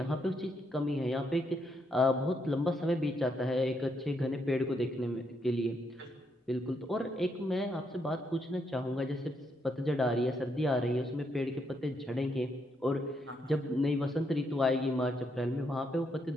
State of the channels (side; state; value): both; normal; correlation 0.77